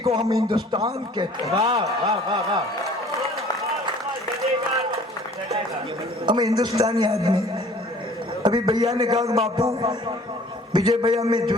हम हिंदुस्तान कहते हैं। हम हिंदुस्तानी आदमी। अभी भैया ने कहा कि बापू, विजय भैया मैं जो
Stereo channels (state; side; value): normal; both; correlation 0.52